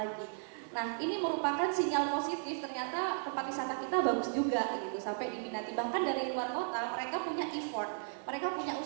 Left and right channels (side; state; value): left; silent; digital silence